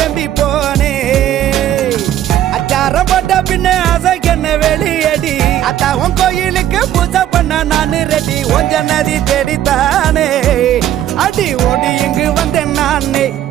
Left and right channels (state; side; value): quieter; left; 12.0 dB